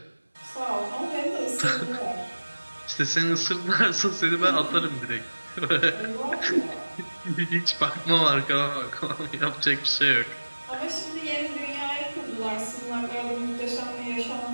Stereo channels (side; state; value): both; inverted; correlation -1.00